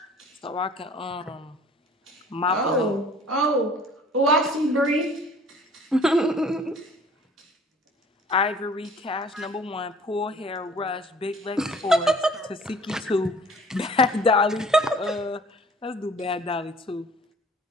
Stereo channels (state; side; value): normal; both; correlation 0.51